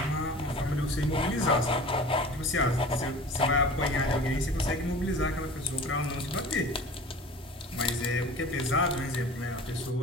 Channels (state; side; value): normal; both; correlation 0.40